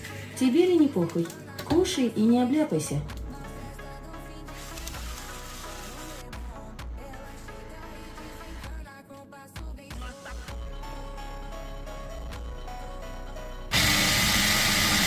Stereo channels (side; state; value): both; identical; correlation 1.00